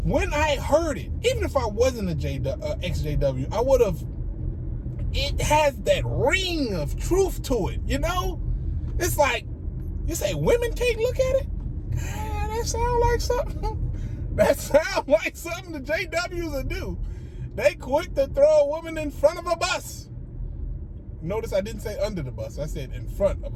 when I heard it, even if I wasn't a ExJW, I would have, it has that ring of truth to it, you know? It's like, you say women can't look at it? God, that sound like something. That sound like something the JWs will do. They quick to throw a woman in front of a bus. Notice I didn't say under the bus. I said in front of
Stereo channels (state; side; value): identical; both; correlation 1.00